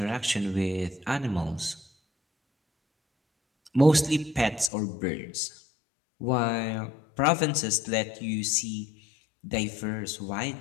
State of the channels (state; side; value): drops out; right; at 4.7 s